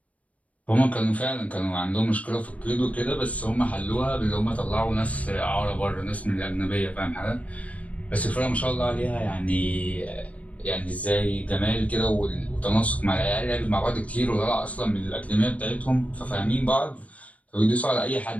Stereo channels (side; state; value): right; late; 0.067 ms